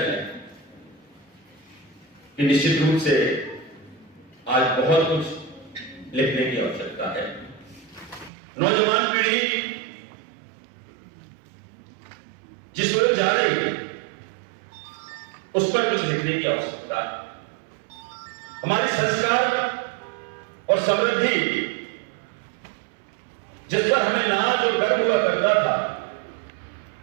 है कि निश्चित रूप से आज बहुत कुछ लिखने की आवश्यकता है। नौजवान पीढ़ी जिस ओर जा रही है, उस पर कुछ लिखने की आवश्यकता है। हमारी संस्कार और समृद्धि, जिस पर हमें नाज और गर्व हुआ करता था,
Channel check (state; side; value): drops out; left; at 8.3 s